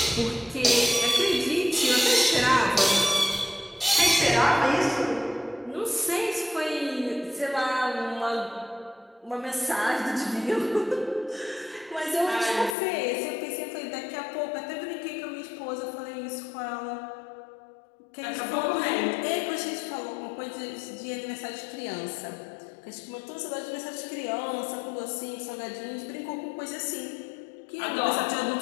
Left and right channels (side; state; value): right; drops out; at 12.8 s